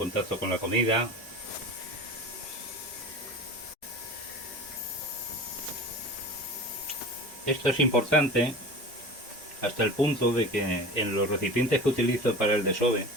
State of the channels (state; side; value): normal; both; correlation 0.35